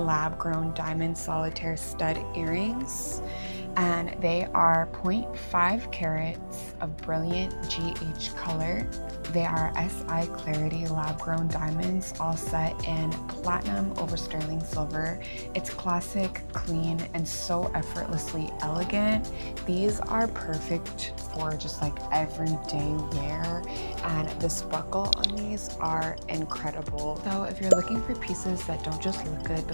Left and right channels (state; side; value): inverted; both; correlation -1.00